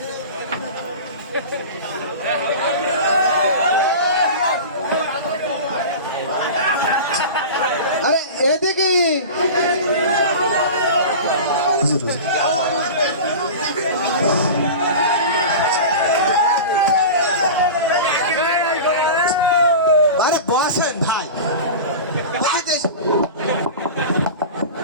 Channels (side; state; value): both; inverted; correlation -0.31